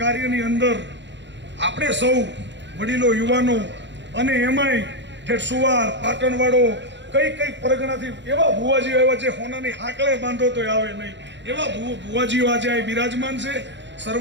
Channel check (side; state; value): left; late; 0.52 ms